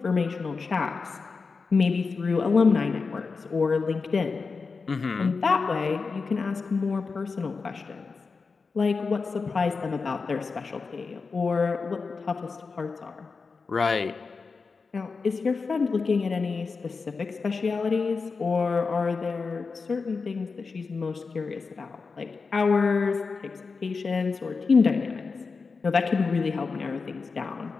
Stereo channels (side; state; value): right; quieter; 4.6 dB